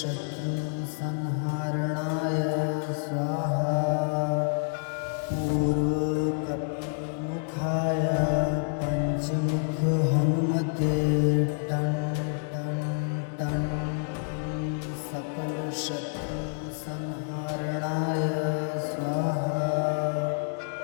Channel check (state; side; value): silent; right; digital silence